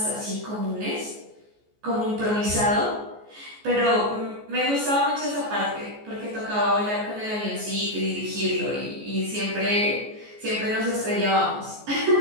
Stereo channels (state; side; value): late; left; 14 ms